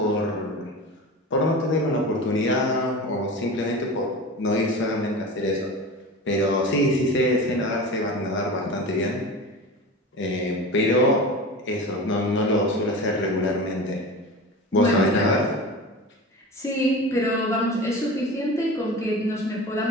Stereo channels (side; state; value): both; normal; correlation 0.31